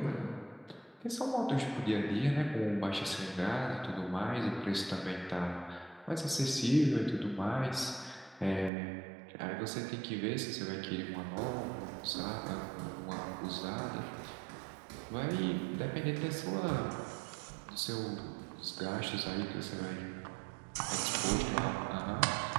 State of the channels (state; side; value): drops out; left; at 8.7 s